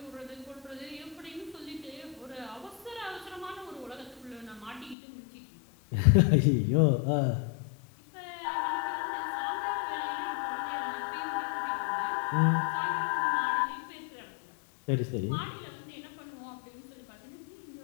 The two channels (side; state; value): right; drops out; at 5.0 s